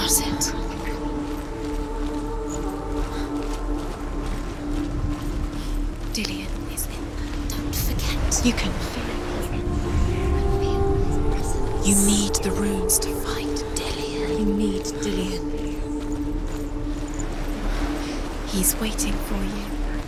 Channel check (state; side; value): identical; both; correlation 1.00